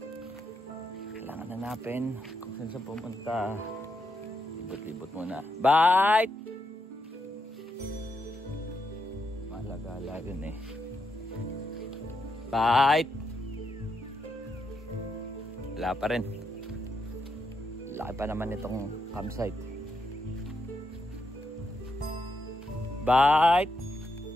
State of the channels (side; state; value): both; normal; correlation 0.82